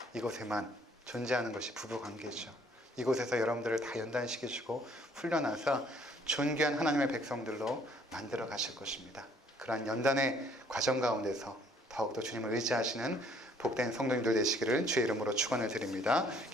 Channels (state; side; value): normal; both; correlation 0.61